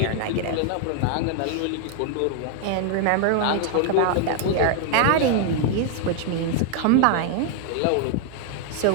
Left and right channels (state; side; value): different; both; correlation 0.00